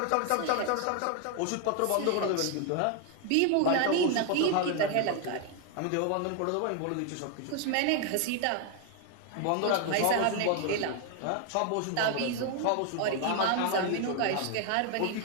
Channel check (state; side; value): different; both; correlation 0.01